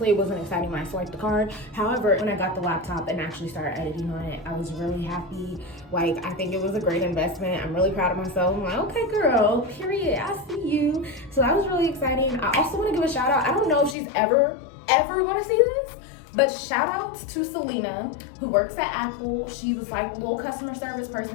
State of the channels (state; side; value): drops out; right; at 14.0 s